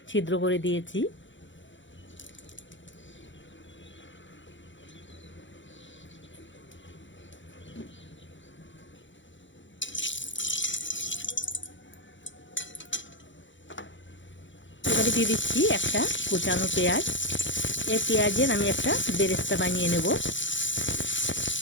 ছিদ্র করে দিয়েছি। এবারে দিয়ে দিচ্ছি একটা কুচানো পেঁয়াজ। এই পেঁয়াজের আমি একটা বেরেস্তা বানিয়ে নেব।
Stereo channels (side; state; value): right; late; 0.55 ms